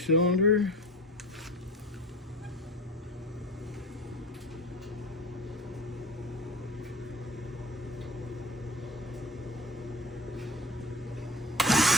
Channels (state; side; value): normal; both; correlation 0.35